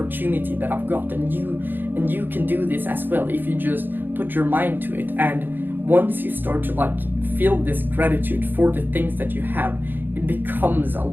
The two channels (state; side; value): late; left; 0.094 ms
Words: that I've got, and you can do this as well if you just put your mind to it. And once you start to like feel this gratitude for the things that you have, it becomes a